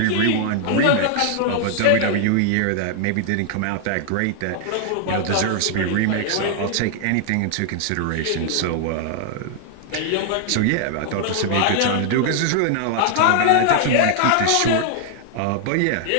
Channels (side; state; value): both; different; correlation 0.00